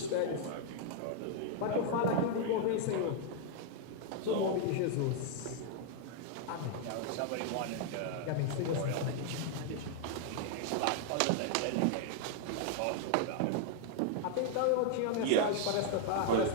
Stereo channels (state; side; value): different; both; correlation 0.00